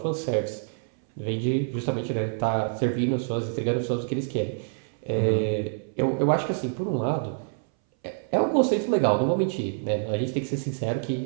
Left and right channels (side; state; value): left; silent; 59 dB below the other